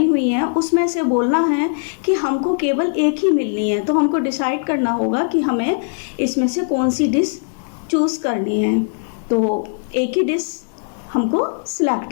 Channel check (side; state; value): right; silent; digital silence